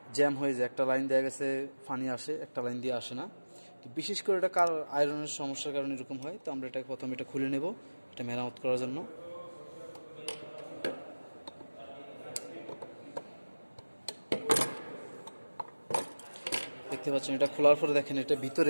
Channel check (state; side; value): inverted; both; correlation -1.00